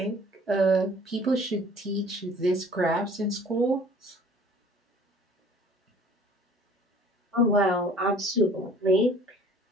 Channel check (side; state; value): both; normal; correlation 0.51